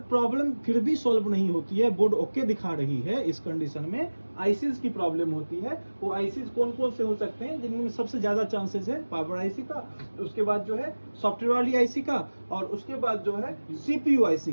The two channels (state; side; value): inverted; both; correlation -1.00